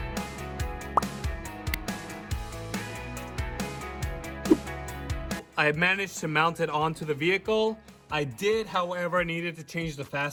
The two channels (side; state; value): both; identical; correlation 1.00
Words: I managed to mount it onto the vehicle. I did, however, needed to change the